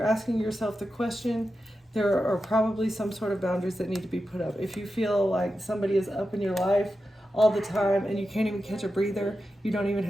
asking yourself the question, there are probably some sort of boundaries that need to be put up. If you feel like somebody is up in your life all the time and you can't even catch a breather, you don't even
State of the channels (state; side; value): normal; both; correlation 0.90